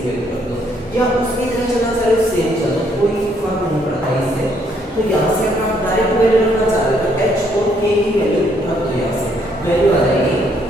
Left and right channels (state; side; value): normal; both; correlation 0.69